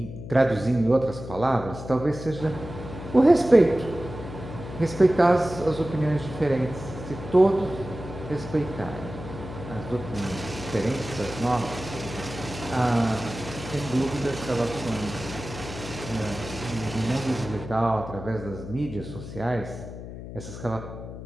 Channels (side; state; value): left; noise; hum, 11 dB below the sound